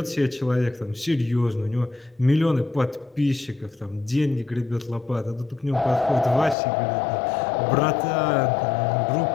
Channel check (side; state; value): right; drops out; at 6.6 s